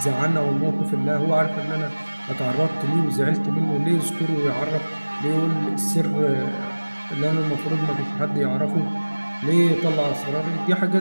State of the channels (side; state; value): both; inverted; correlation -1.00